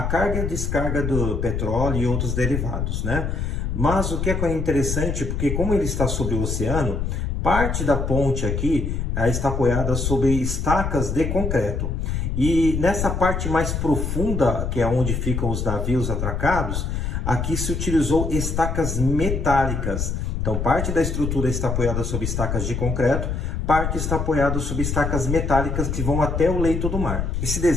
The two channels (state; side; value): noise; left; rumble, 1 dB below the sound